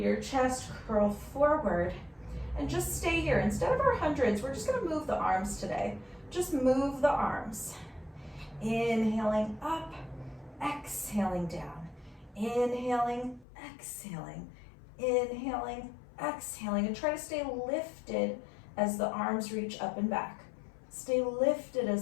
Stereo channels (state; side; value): drops out; right; at 13.5 s